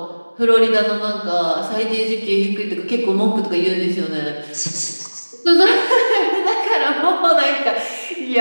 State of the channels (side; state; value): both; inverted; correlation -1.00